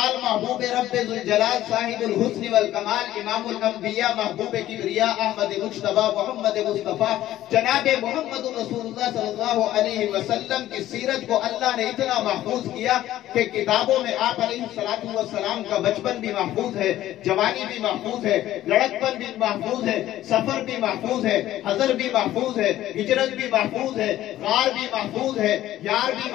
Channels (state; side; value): quieter; right; 13.8 dB